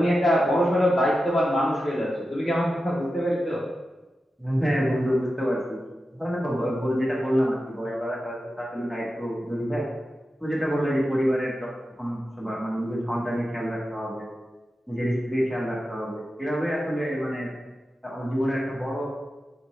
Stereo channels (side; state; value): both; normal; correlation 0.91